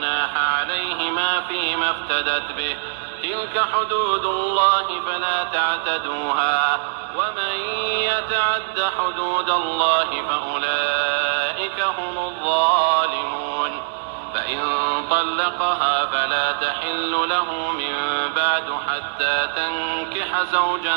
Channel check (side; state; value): left; silent; 64 dB below the other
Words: عليهما فيما افتدت به تلك حدود الله فلا تعتدوها ومن يتعد حدود الله فأولئك هم الظالمون. فإن طلقها فلا تحل له من بعد حتى تنكح زوجا